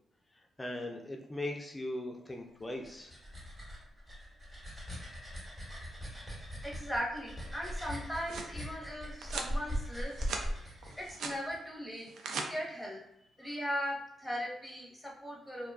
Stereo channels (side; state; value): both; normal; correlation 0.86